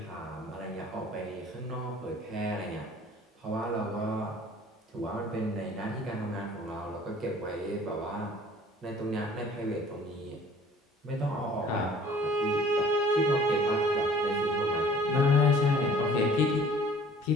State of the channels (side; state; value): both; normal; correlation 0.51